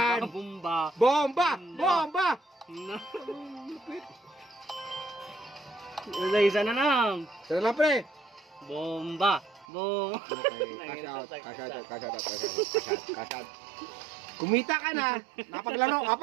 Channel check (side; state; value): left; drops out; at 9.7 s